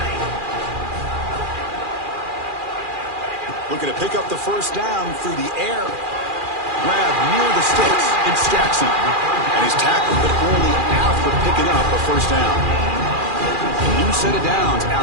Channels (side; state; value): left; late; 2.4 ms